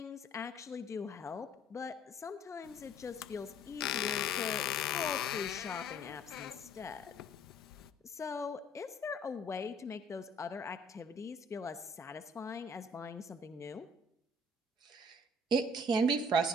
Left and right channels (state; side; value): normal; both; correlation 0.57